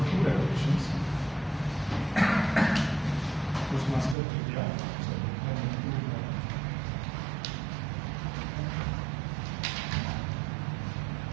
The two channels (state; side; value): drops out; left; at 4.2 s